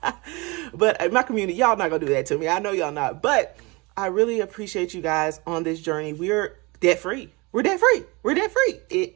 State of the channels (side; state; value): left; quieter; 26.1 dB